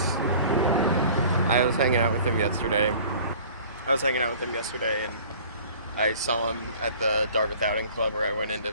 I was hanging out with him yesterday. And I saw him at the Dartmouth Outing Club, where I went in to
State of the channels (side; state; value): both; inverted; correlation -0.47